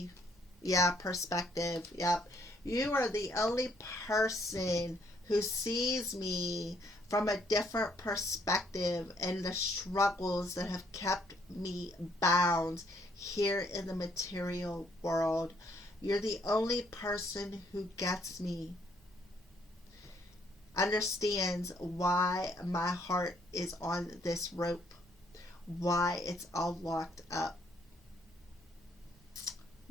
Yeah, perspective. Yep. You are the only person who sees me from a different perspective and the struggles that have kept me bound here in the material world. You're the only person who gets me, understands why my heart is on this rope, why it's all locked up.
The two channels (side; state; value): both; normal; correlation 0.68